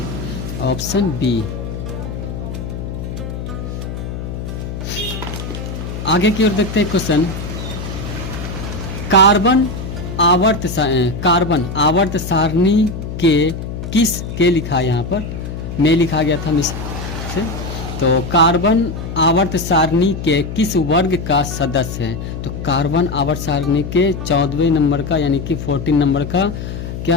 ऑप्शन बी। आगे की ओर देखते हैं क्वेश्चन, कार्बन आवर्त सारणी के किस के लिखा है यहाँ पर, में लिखा गया था मिस से, तो कार्बन आवर्त सारणी के किस वर्ग का सदस्य है? तो कार्बन आवर्त सारणी के 14वें नंबर का यानी कि 14 नंबर का क्या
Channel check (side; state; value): left; noise; hum, 7 dB below the sound